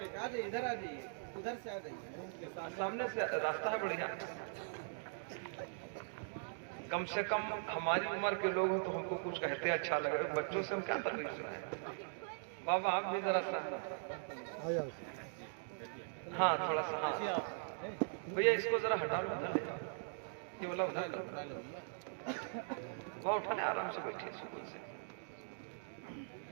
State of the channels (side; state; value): left; silent; digital silence